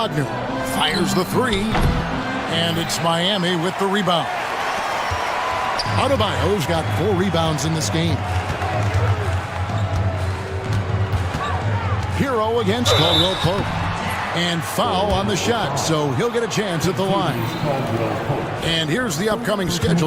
Fires the 3. And it's Miami with the rebound. Adebayo's got 4 rebounds in this game. Hero against Caldwell-Pope. And foul on the shot, so he'll get a chance at the line. And here's the upcoming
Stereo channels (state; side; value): identical; both; correlation 1.00